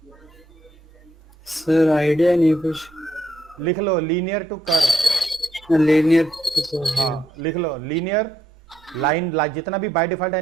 सर आइडिया नहीं कुछ। लिख लो लीनियर टू कर्व। लीनियर। हाँ लिख लो लीनियर लाइन। जितना भी बाय डिफॉल्ट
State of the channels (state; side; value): normal; both; correlation 0.75